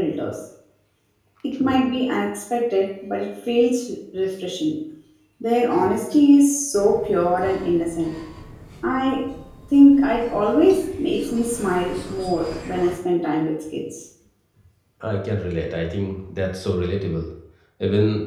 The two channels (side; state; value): both; identical; correlation 1.00